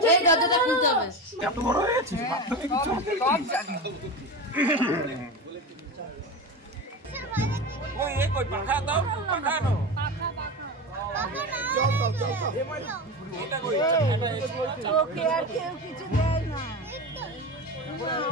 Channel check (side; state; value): both; normal; correlation 0.23